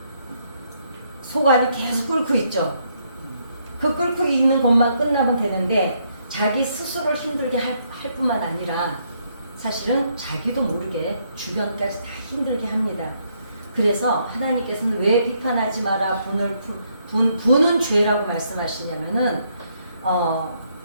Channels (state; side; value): inverted; both; correlation -0.73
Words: 속 안이 계속 끓고 있죠. 그 끓고 있는 것만 끝나면 되는데 자기 스스로를 힘들게 할 뿐만 아니라 사실은 자기도 모르게 주변까지 다 힘들게 합니다. 그래서 하나님께서는 왜 비판하지 마라 분은 죄라고 말씀하시냐면은